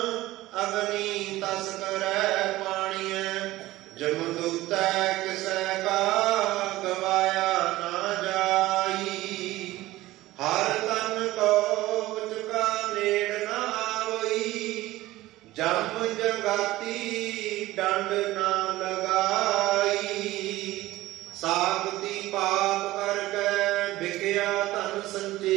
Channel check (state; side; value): quieter; left; 17.2 dB